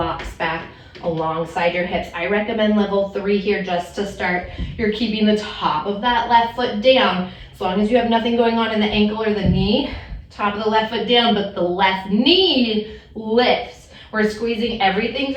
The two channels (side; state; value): both; identical; correlation 1.00